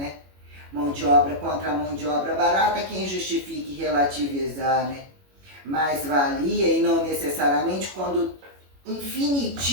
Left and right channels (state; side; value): late; left; 21 ms